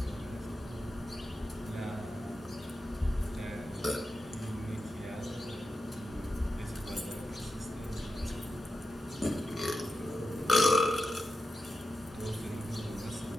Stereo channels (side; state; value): both; normal; correlation 0.90